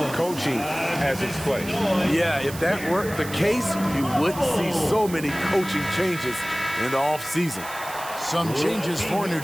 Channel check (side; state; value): right; noise; hiss, 13 dB below the sound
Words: coaching has its place. Yeah, if that weren't the case, you wouldn't see so many coaching changes in the offseason. Some changes for New